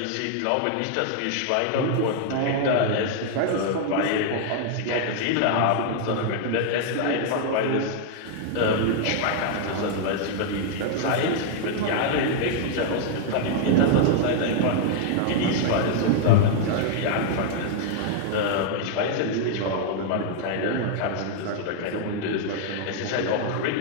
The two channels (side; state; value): both; different; correlation -0.01